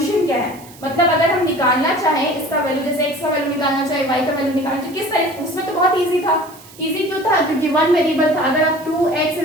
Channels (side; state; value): right; noise; hiss, 22 dB below the sound